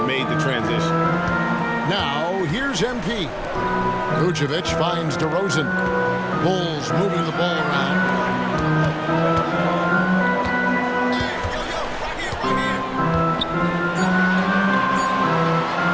made the transition. Now, here's MP. Vucevic finds DeRozan. Bulls moving the ball around.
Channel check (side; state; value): both; identical; correlation 1.00